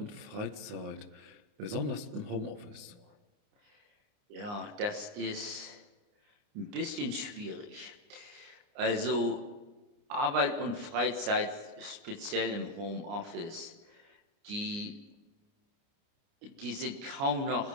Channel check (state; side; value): late; left; 29 ms